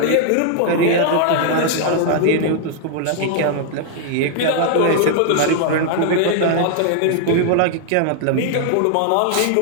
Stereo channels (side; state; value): both; different; correlation 0.00